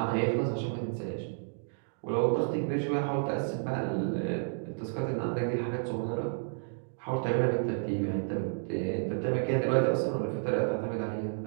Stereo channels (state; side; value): silent; left; digital silence